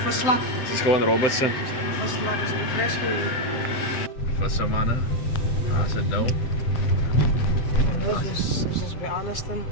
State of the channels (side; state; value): right; late; 7.7 ms